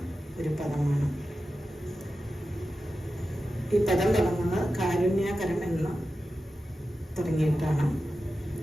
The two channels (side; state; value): both; normal; correlation 0.92